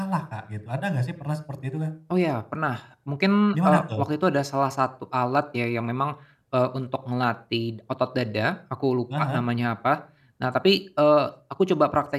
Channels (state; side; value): identical; both; correlation 1.00